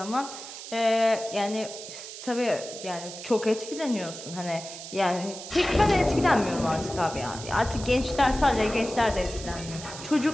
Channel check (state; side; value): noise; right; hiss, 11 dB below the sound